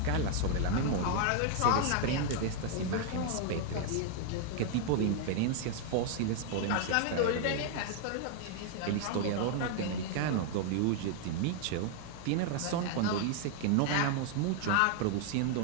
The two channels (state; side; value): different; both; correlation 0.00